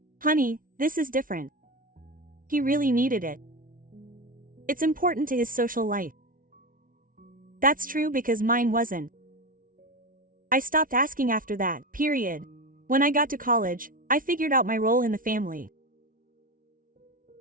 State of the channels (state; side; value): late; left; 0.40 ms